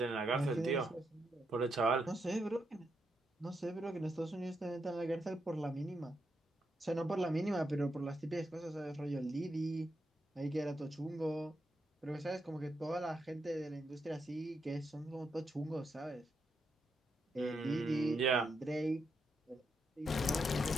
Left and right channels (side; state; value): both; normal; correlation 0.82